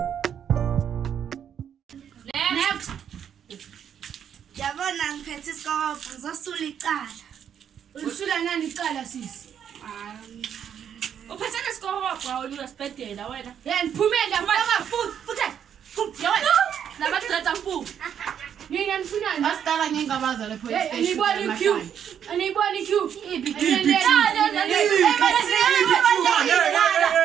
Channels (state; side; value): quieter; left; 8.7 dB